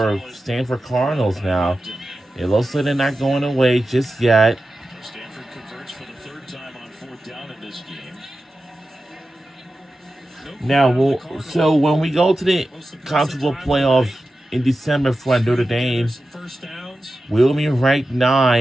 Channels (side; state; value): both; normal; correlation 0.93